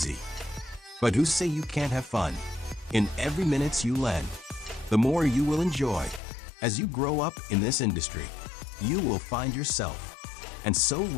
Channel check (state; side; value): drops out; right; at 6.2 s